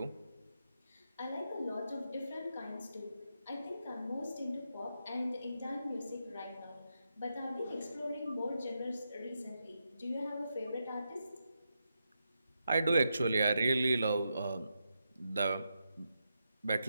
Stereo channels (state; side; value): inverted; both; correlation -0.85